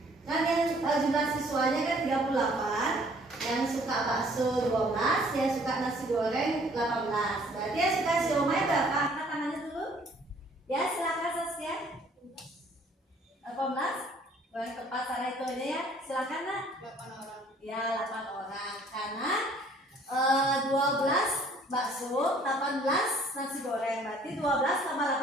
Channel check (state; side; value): normal; both; correlation 0.58